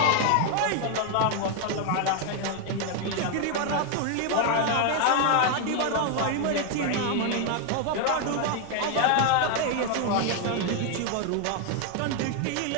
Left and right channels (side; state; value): both; different; correlation 0.01